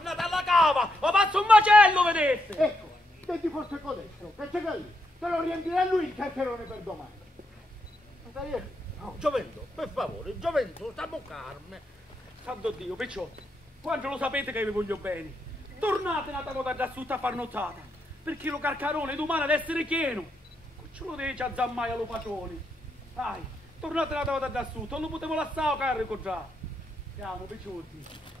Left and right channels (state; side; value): normal; both; correlation 0.80